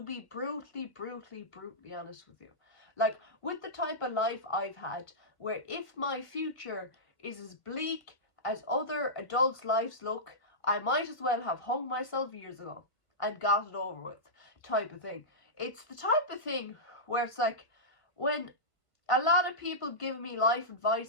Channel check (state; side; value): late; right; 1.5 ms